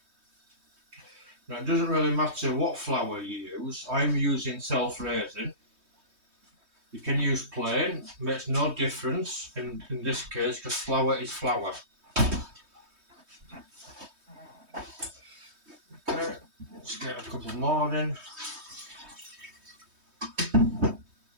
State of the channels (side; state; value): left; late; 3.2 ms